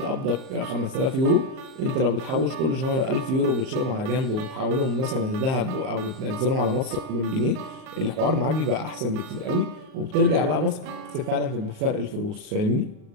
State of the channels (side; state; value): left; late; 38 ms